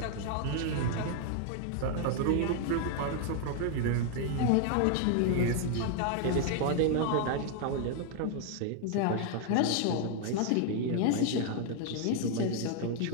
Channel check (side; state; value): both; different; correlation 0.00